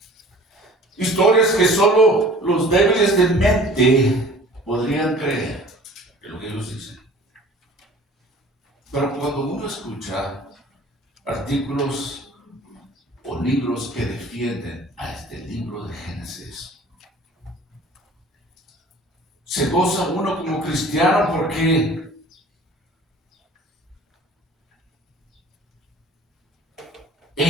historias que solo los débiles de mente podrían creer en lo que ellos dicen. Pero cuando uno escucha artículos o libros que defienden a este libro de Génesis, se goza uno como cristiano porque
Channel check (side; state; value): both; normal; correlation 0.47